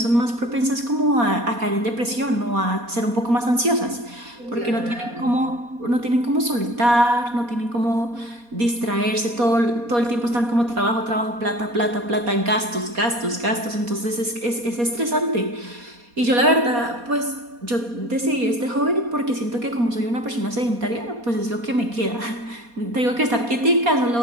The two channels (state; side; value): late; left; 4.2 ms